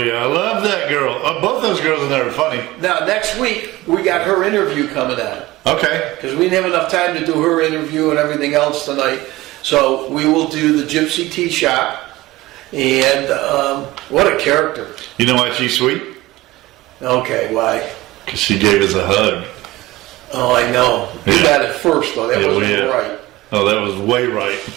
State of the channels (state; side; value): quieter; left; 18.7 dB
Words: I love that girl. Both those girls in there are funny. Now next week we got her interview coming on. Okay. Because we didn't have enough time to do her interview and everything else tonight, so we will do the Gypsy Tea Shop. And what a character. You know why she's sweet? Okay, why? Because she gave us a hug. Oh, I know. We got it first, though. That wasn't right. Oh, that was way right.